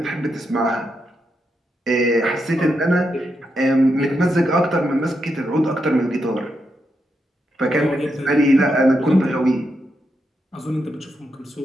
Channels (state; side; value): normal; both; correlation 0.83